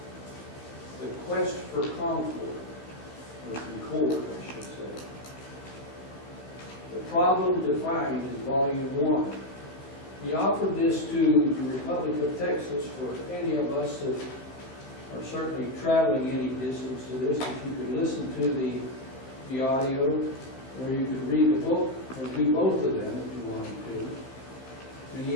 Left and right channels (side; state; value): right; late; 15 ms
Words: the quest for concord, or concord, I should say. The Problem Defined is Volume 1. He offered this to the Republic of Texas for any of us that are certainly traveling any distance to this, if you could listen to the audio, or you could read the book, or do both of them if you wanted to. And